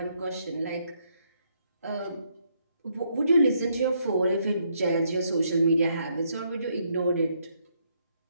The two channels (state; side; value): inverted; both; correlation -0.73